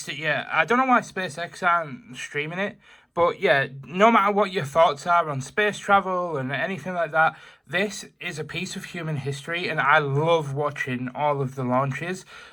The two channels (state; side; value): identical; both; correlation 1.00